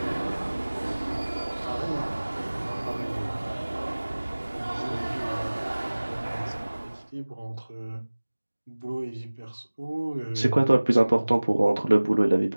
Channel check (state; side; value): inverted; both; correlation -1.00